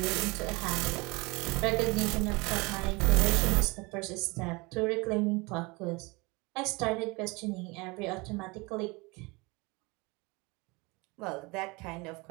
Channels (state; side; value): quieter; left; 26.1 dB